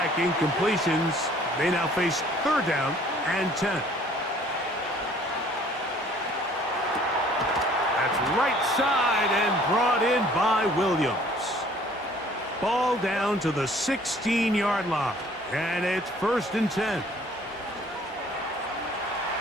incompletions, they now face 3rd down and 10. That's right side and brought in by Williams. Ball down to the 16-yard line, and it's 1st and 10.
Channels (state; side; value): normal; both; correlation 0.56